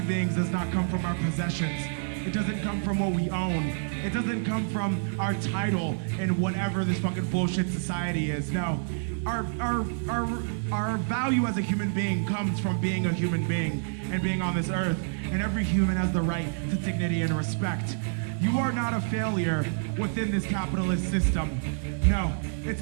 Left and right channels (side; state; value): left; silent; digital silence